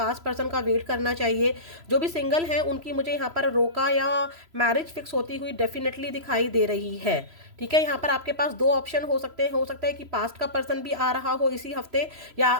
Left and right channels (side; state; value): left; late; 3.0 ms